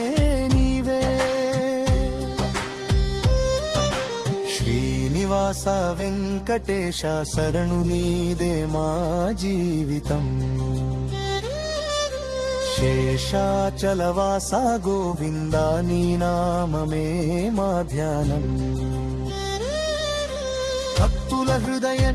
నీవే. శ్రీనివాస వెంకటేశ శరణు నీదే మా జీవితం. శేషాచలవాస గోవింద నీ నామమే మా ధ్యానం. భక్తుల హృదయ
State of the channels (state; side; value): identical; both; correlation 1.00